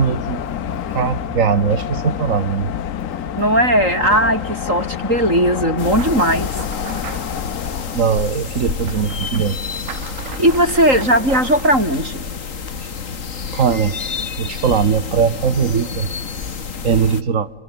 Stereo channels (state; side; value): late; left; 3.8 ms